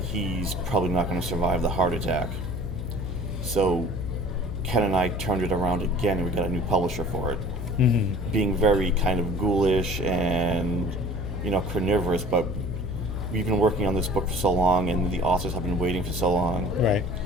he's probably not going to survive the heart attack. So Ken and I turned it around again, and we got a new publisher for it. Being very kind of ghoulish and, carnivorous, but we've been working on this book for so long, and the authors have been waiting for so long. Right.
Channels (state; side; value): noise; left; hum, 5 dB below the sound